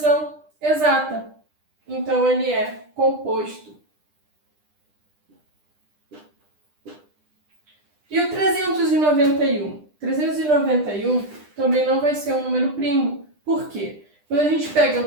exata. Então, ele é composto. E o 391? 391 também não vai ser um número primo. Por quê? Quando a gente pega o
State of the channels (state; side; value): late; left; 9.9 ms